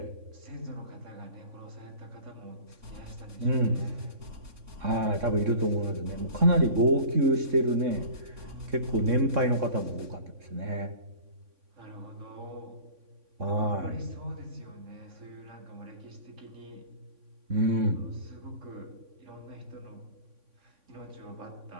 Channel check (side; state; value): left; late; 3.6 ms